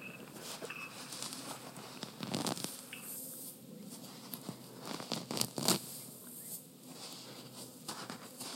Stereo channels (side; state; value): both; identical; correlation 1.00